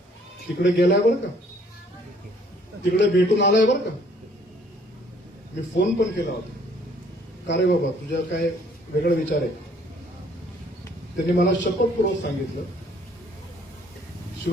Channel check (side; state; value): both; normal; correlation 0.61